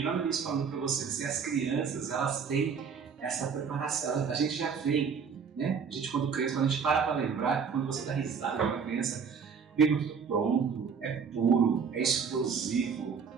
lá no início falando para vocês, as crianças, elas têm essa preparação, a gente já vem, né? A gente quando cresce, quando a gente para lembrar, quando você dá risada de uma criança, vem tudo pronto, é puro, é explosivo.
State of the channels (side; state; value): left; quieter; 6.2 dB